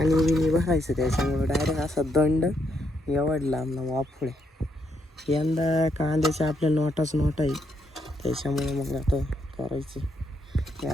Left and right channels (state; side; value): normal; both; correlation 0.77